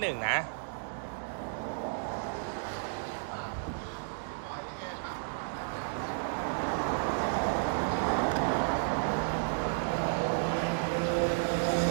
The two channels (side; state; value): left; silent; digital silence